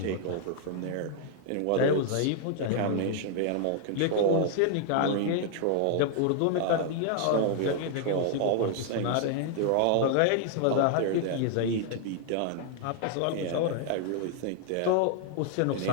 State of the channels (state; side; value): different; both; correlation 0.00